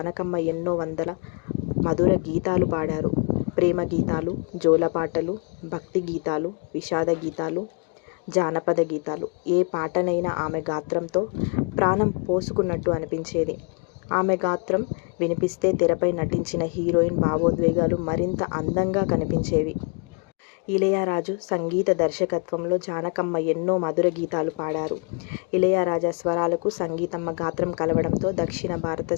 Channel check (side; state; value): right; quieter; 36.1 dB